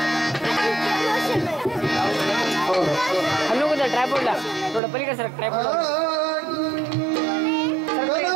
हल्लो कुठं ट्रायपॉडला थोडं पलीकडे सर ट्रायपॉड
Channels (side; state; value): left; drops out; at 4.8 s